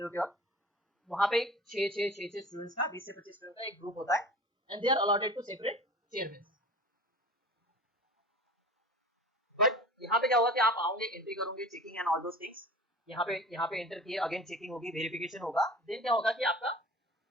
के वक्त, वहाँ पे 6 स्टूडेंट्स का, 20 से 25 स्टूडेंट का एक ग्रुप होता है, and they are allotted to separate chairman. यहाँ पे क्या होगा कि आप आओगे, एंट्री करोगे, checking and all those things, यहाँ पे एंटर किए, अगेन चेकिंग होगी, वेरिफिकेशन होगा, देन क्या होगा कि आपका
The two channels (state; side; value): normal; both; correlation 0.40